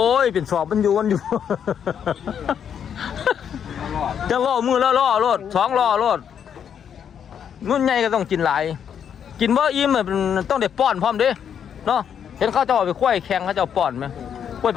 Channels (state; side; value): quieter; right; 8.3 dB